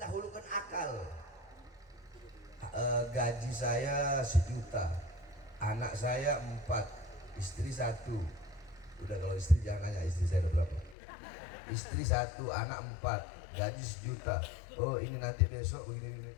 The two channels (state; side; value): drops out; right; at 11.0 s